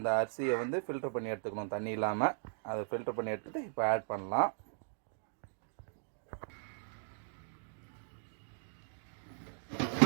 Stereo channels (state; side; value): silent; left; digital silence